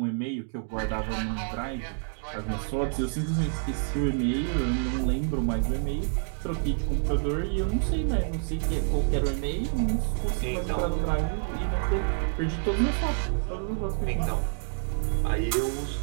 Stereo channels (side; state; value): left; silent; 59 dB below the other